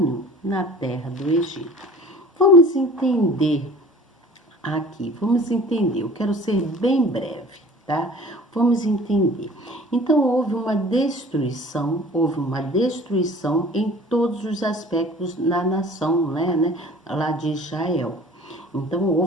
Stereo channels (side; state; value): both; normal; correlation 0.46